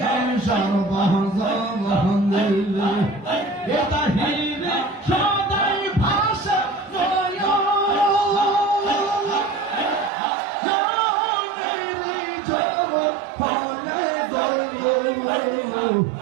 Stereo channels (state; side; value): drops out; left; at 10.1 s